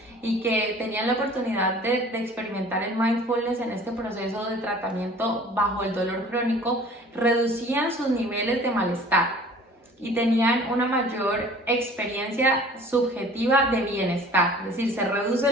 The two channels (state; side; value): normal; both; correlation 0.48